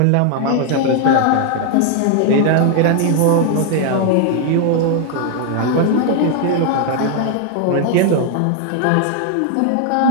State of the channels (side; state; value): both; different; correlation 0.00